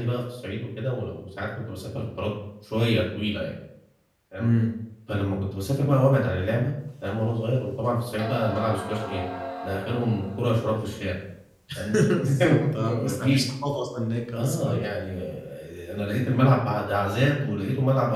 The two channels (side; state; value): both; identical; correlation 1.00